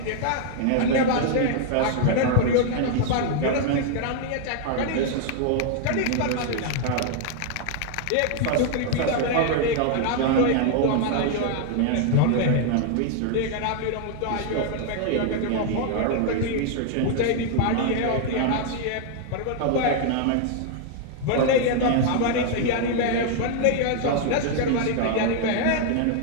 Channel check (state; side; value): different; both; correlation 0.00